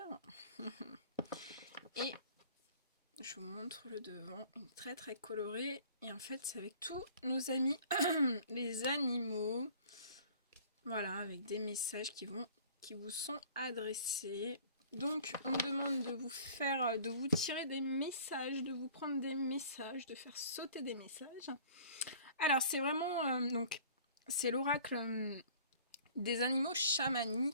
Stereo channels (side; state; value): both; inverted; correlation -0.49